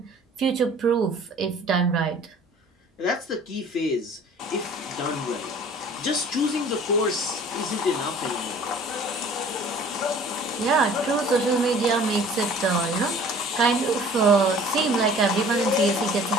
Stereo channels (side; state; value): both; normal; correlation 0.49